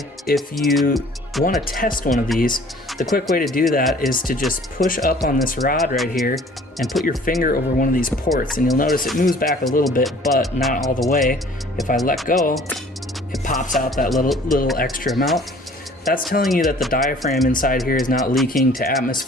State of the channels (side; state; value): both; normal; correlation 0.52